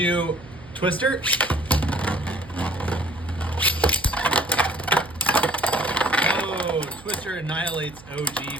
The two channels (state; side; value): noise; right; hum, 20 dB below the sound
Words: do Twister. Oh, Twister annihilates